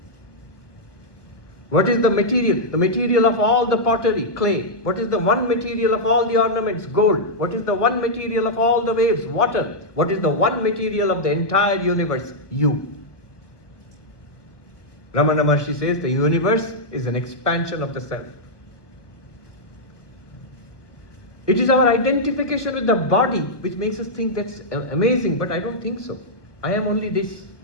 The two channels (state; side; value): late; right; 1.3 ms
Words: What is the material? The material of all the pottery, clay. What is the one material of all the ornaments? Gold. What is the one material of all the waves? Water. What is the one material of the entire universe? You. Ramana Maharshi says the universe is an expansion of the self. It is our identification with the body which makes us think that's amazing, but I don't think so. I am only this.